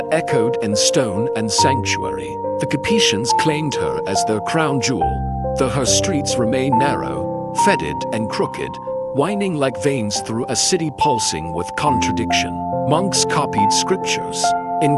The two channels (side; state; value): both; identical; correlation 1.00